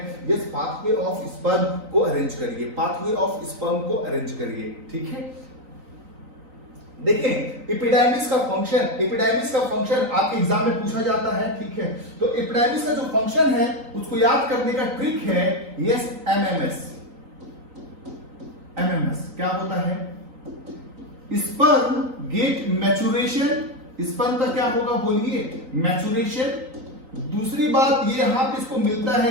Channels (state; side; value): late; left; 3.9 ms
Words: यस, पाथवे ऑफ स्पर्म को अरेंज करिए, ठीक है। देखें, एपिडाइमिस का फंक्शन आपके एग्जाम में पूछा जाता है, ठीक है। तो एपिडाइमिस का जो फंक्शन है उसको याद करने का ट्रिक है, यस, एमएमएस। क्या होता है, स्पर्म गेट मैचुरेशन। स्पर्म का क्या होगा बोलिए, मैचुरेशन। दूसरी बात ये यहां पे इसको मिलता है